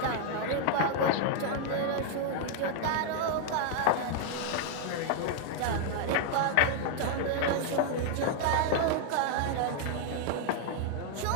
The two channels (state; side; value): different; both; correlation -0.01